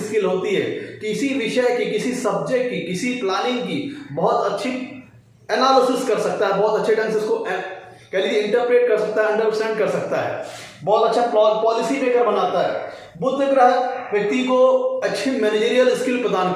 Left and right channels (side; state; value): both; identical; correlation 1.00